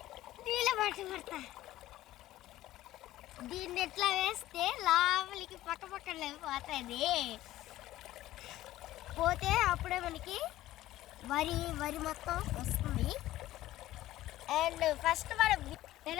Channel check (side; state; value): right; quieter; 15.1 dB